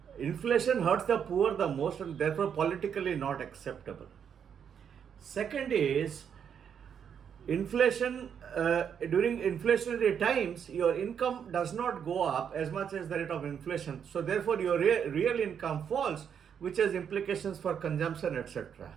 inflation hurts the poor the most and therefore politically not acceptable. Second is inflation, during inflationary times, your income does not go up as much as the rate of inflation. So therefore your real income falls, which has implications for consumption, etc.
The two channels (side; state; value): left; quieter; 7.9 dB